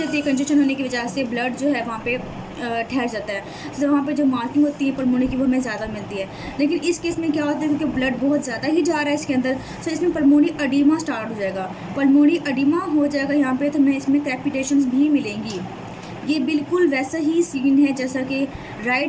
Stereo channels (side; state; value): both; identical; correlation 1.00